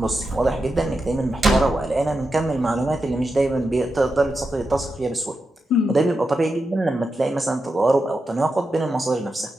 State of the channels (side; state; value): both; normal; correlation 0.88